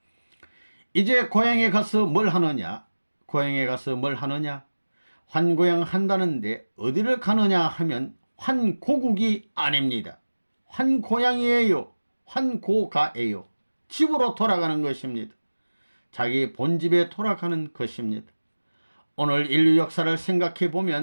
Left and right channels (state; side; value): inverted; both; correlation -1.00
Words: 이제 고향에 가서 뭘 하느냐? 고향에 가서 뭘 하느냐? 환고향 한다는데 어디를 가느냐 하면 환고국이 아닙니다. 환고향이에요. 환고가예요. 집으로 돌아가는 것입니다. 자기 본집에 돌아가는 것입니다. 오늘 인류 역사를 생각해